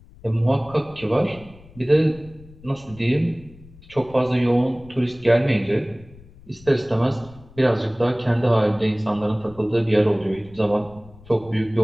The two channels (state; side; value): noise; left; rumble, 22 dB below the sound